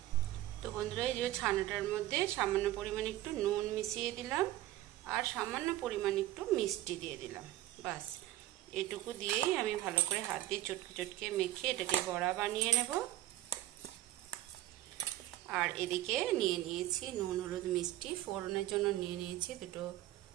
তো বন্ধুরা এই যে ছানাটার মধ্যে সামান্য পরিমাণ একটু নুন মিশিয়ে দিলাম আর সামান্য পরিমাণ একটু মিষ্টি দিয়ে দিলাম। বাস এটুকু দিয়েই আমি ভালো করে হাত দিয়ে চটকে চটকে মেখে এটাকে বড়া বানিয়ে নেব। আর এদিকে নিয়ে নিয়েছি নুন হলুদ মিষ্টি। ফোড়নের জন্য নিয়ে নিয়েছি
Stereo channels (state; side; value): quieter; left; 14.8 dB